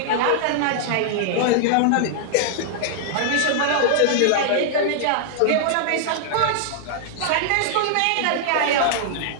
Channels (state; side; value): different; both; correlation -0.01